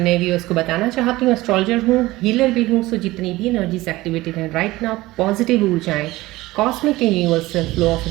व्यूअर्स को बताना चाहती हूँ एस्ट्रोलॉजर हूँ, हीलर भी हूँ। सो जितनी भी एनर्जीज एक्टिवेटेड हैं राइट नाउ, पॉजिटिव ऊर्जाएं, cosmic and universal flow of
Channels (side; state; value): left; quieter; 18.7 dB